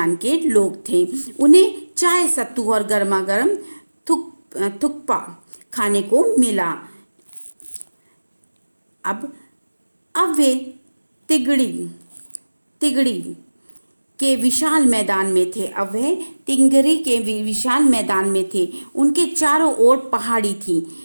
के लोग थे। उन्हें चाय, सत्तू और गर्मा गर्म थुक्पा खाने को मिला। अब वे तिगड़ी के विशाल मैदान में थे। अब वह तिंगरी के विशाल मैदान में थे। उनके चारों ओर पहाड़ी थी।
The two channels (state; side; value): inverted; both; correlation -1.00